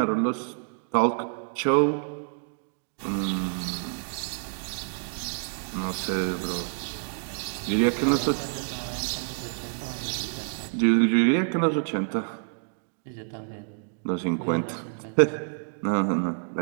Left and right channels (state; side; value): silent; left; 60 dB below the other